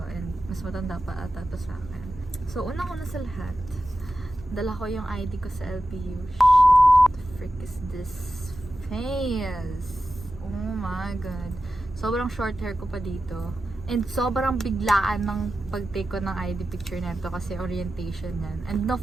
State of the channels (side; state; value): both; normal; correlation 0.92